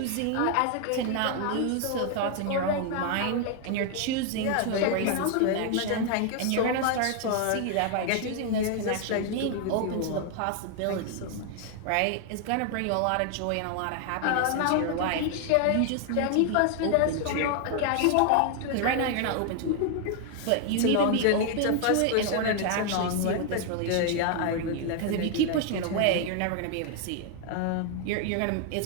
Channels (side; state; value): both; different; correlation 0.00